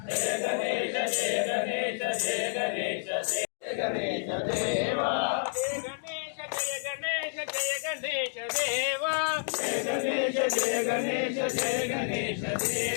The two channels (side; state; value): right; silent; digital silence